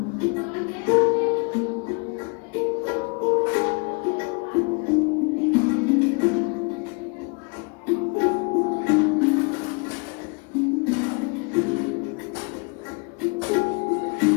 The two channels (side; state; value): right; quieter; 33.7 dB